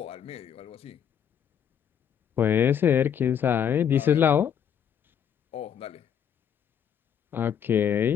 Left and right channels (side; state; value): right; quieter; 8.5 dB